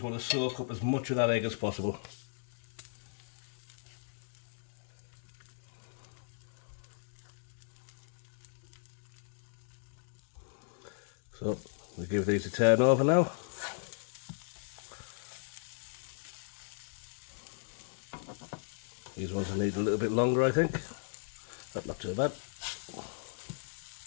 want to soak up as much of that egg as possible. So we'll give these a turn over now. These ones will need a little bit longer, I think. That's not too bad.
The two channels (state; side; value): silent; right; digital silence